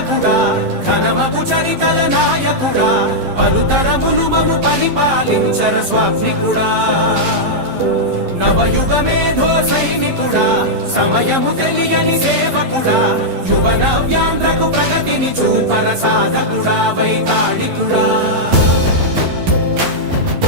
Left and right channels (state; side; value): late; left; 11 ms